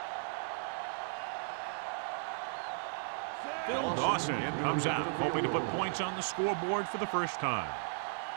Phil Dawson comes out, hoping to put points on the scoreboard for the first time.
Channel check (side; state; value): left; silent; digital silence